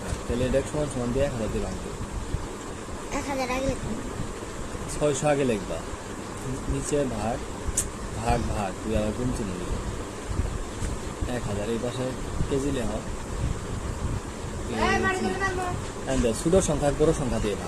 ভাগ। তাহলে এটা সমান সমান দিয়ে 1000 দিয়ে ভাগ দেবে। 1000 আগে 600 আগে লিখবা, নিচে ভাগ ভাগ ভাগ, তুই আবার গুণ চিহ্ন দিবি। 1000 এই পাশে কেজি লেখ। ছোট সংখ্যা বড় সংখ্যা দিয়ে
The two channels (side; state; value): both; identical; correlation 1.00